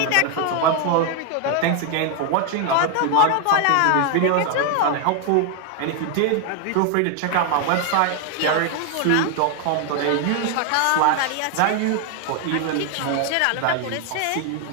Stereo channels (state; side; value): different; both; correlation 0.01